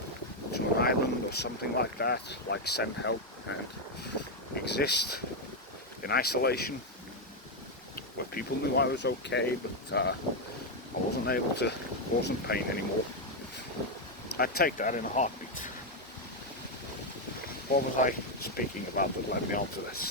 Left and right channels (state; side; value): normal; both; correlation 0.03